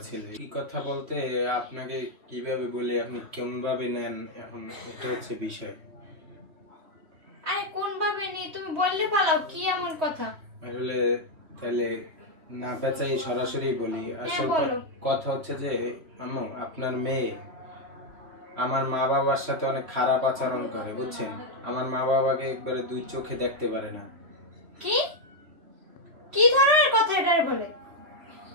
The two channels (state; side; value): late; left; 3.1 ms